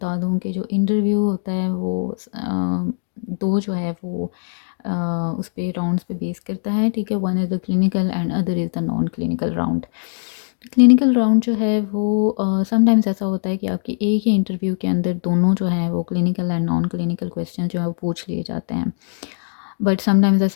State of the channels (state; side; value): silent; right; digital silence